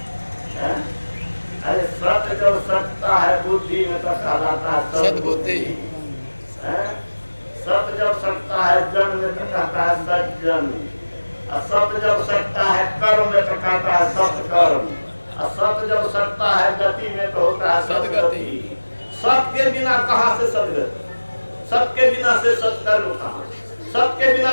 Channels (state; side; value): inverted; both; correlation -1.00